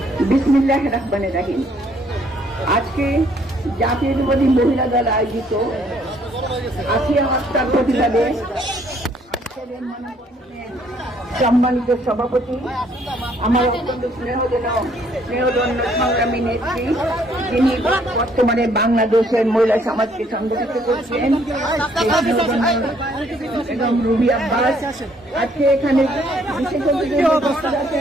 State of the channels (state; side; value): normal; both; correlation 0.65